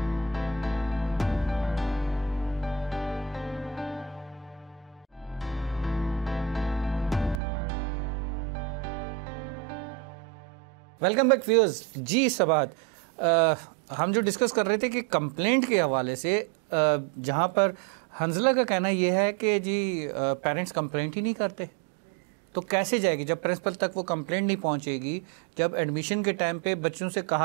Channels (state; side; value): drops out; left; at 7.4 s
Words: Welcome back viewers. जी सबात, हम जो डिस्कस कर रहे थे कि कंप्लेंट के हवाले से, जहाँ पर हंजला का कहना यह है कि जी पेरेंट्स कंप्लेंट ही नहीं करते, तो कैसे जाएगी जब प्रिंसिपल तक वो कंप्लेंट नहीं पहुँचेगी, जब एडमिशन के टाइम पे बच्चों से